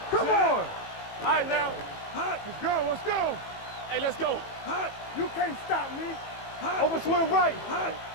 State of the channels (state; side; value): late; right; 18 ms